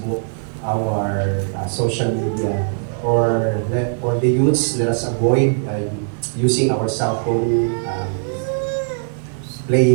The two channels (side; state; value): left; silent; digital silence